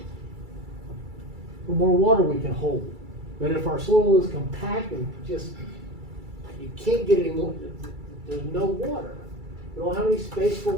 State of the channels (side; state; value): left; late; 2.3 ms